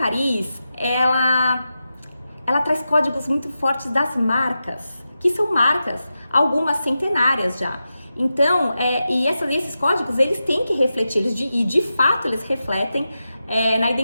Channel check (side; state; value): both; inverted; correlation -0.90